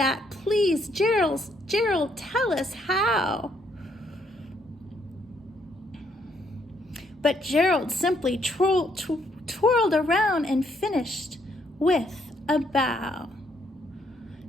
Please, Gerald, tell us how." But Gerald simply twirled around and finished with a bow.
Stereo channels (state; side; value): normal; both; correlation 0.71